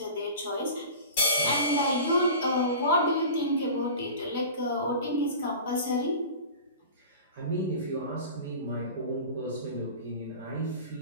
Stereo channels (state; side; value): inverted; both; correlation -0.36